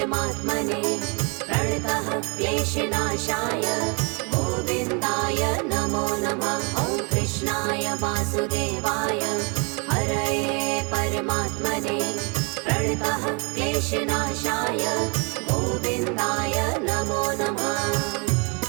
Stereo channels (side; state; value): left; quieter; 33.3 dB